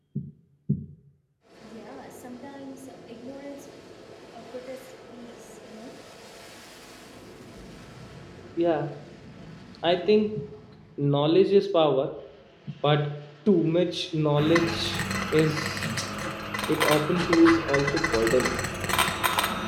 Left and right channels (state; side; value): identical; both; correlation 1.00